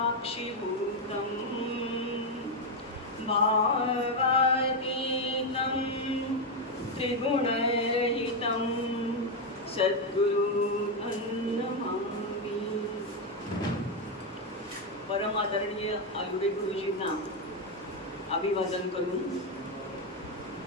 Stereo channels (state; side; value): normal; both; correlation 0.05